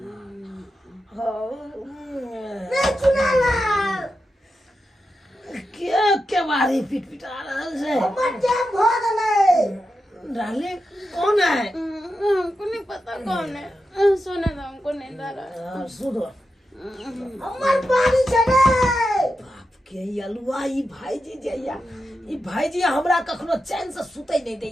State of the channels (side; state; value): both; normal; correlation 0.89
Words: रे चुनाव क्या बारी पिटपिटा रहल छै? हमर जे भोग लगे डाले कौन है? हमको नहीं पता कौन है। सोने दो, हमको नींद आ रहा है। सुनो हमर पानी छले बाप के अलुआ ई भाईजी जइया, ई भाईजी हमरा कखनो चैन से सुतै नहीं